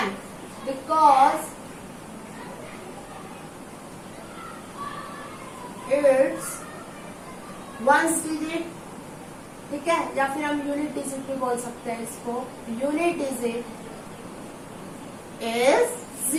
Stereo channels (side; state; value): both; identical; correlation 1.00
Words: because it's ones digit. ठीक है, या फिर हम यूनिट डिजिट भी बोल सकते हैं इसको। Unit digit is